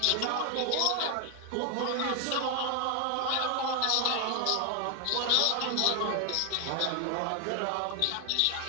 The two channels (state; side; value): different; both; correlation 0.01